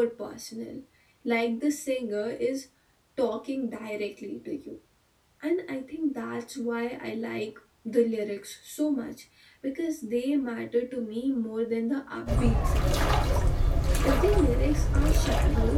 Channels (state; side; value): identical; both; correlation 1.00